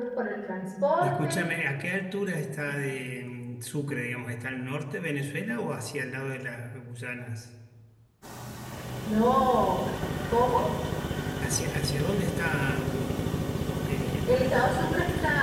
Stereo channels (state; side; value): identical; both; correlation 1.00